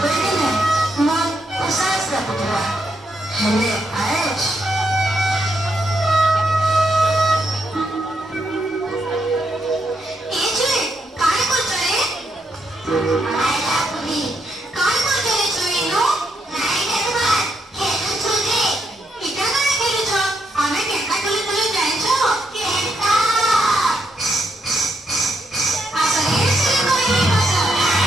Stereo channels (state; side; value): normal; both; correlation 0.79